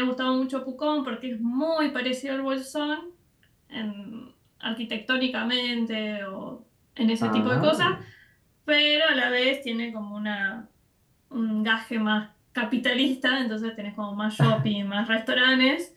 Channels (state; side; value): identical; both; correlation 1.00